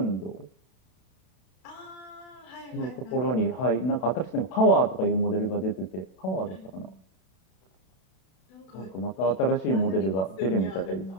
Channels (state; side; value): late; right; 32 ms